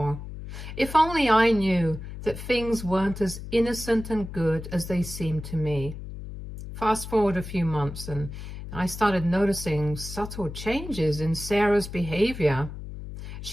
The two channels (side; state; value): left; noise; hum, 10 dB below the sound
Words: If only I knew that things weren't as innocent and good as they seemed to me. Fast forward a few months and I started noticing subtle changes in Sarah's behavior.